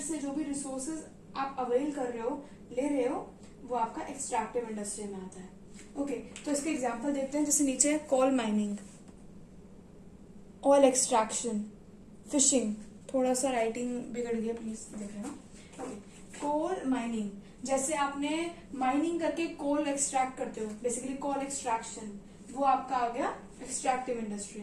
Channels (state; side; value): identical; both; correlation 1.00